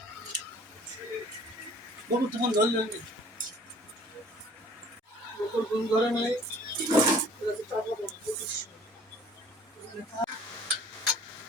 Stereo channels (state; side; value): normal; both; correlation 0.52